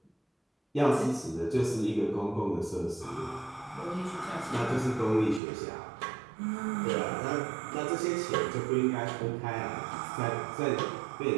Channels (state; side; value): drops out; left; at 5.4 s